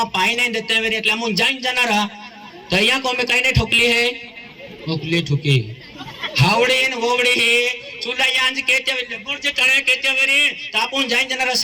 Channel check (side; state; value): both; identical; correlation 1.00